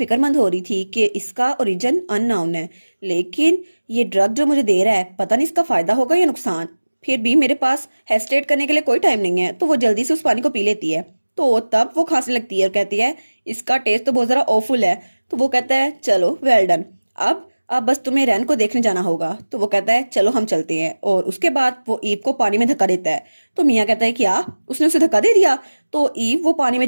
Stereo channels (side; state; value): both; inverted; correlation -1.00